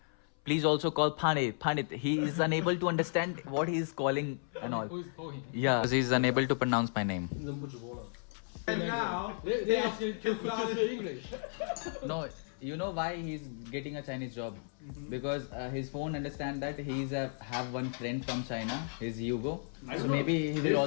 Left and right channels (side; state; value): right; silent; 55 dB below the other